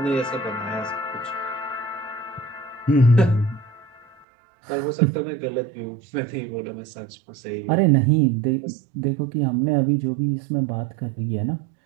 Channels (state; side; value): drops out; left; at 4.2 s